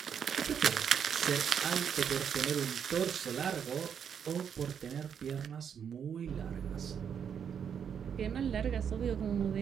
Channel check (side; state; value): left; quieter; 7.8 dB